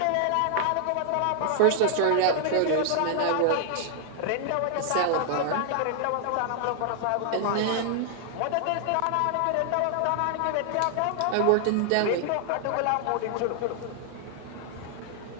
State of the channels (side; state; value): both; different; correlation 0.00